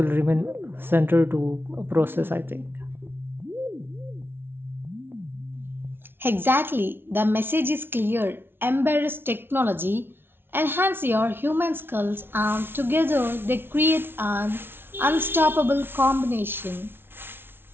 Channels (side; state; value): left; late; 0.11 ms